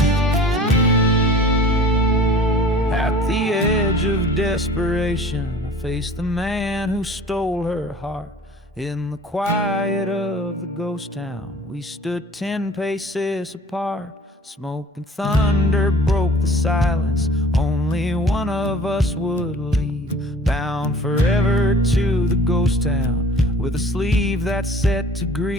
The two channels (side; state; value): both; normal; correlation 0.46